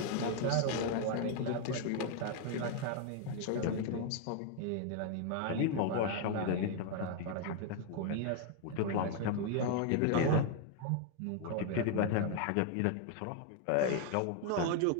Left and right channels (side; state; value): both; different; correlation 0.00